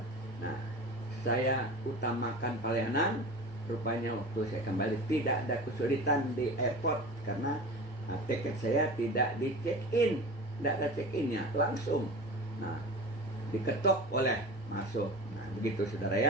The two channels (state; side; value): normal; both; correlation 0.34